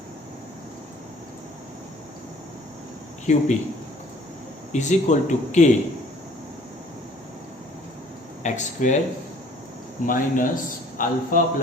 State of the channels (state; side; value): normal; both; correlation 0.54